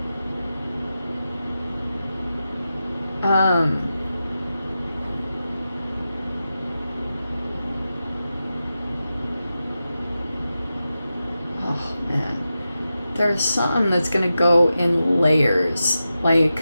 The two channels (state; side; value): inverted; both; correlation -0.91